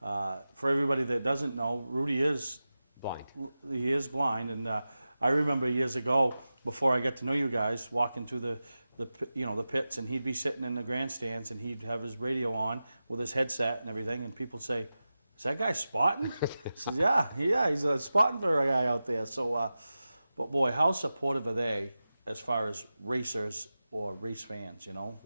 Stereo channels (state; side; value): inverted; both; correlation -0.94